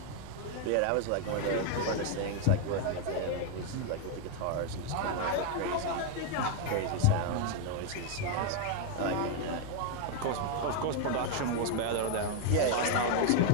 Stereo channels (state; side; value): different; both; correlation 0.01